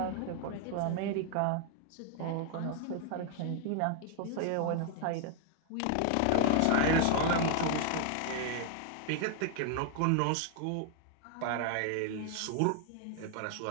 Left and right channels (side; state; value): both; different; correlation 0.00